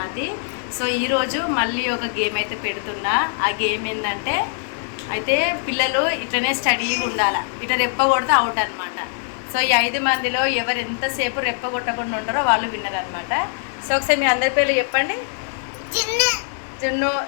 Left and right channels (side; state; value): right; silent; digital silence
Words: So ఈరోజు మళ్ళీ ఒక గేమ్ అయితే పెడుతున్నా. ఆ గేమ్ ఏంటంటే అయితే పిల్లలు ఇట్లనే స్టడీగా ఉండాలి. ఇట్లా రెప్ప కొడితే అవుట్ అనమాట. సో ఈ 5 మందిలో ఎవరు ఎంతసేపు రెప్ప కొట్టకుండా ఉంటారో వాళ్ళు విన్నర్ అనమాట. సో ఒకసారి మీ అందరి పేర్లు చెప్పండి. చిన్ను,